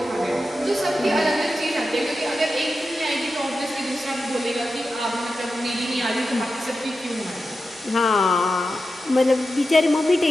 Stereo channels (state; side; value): normal; both; correlation 0.91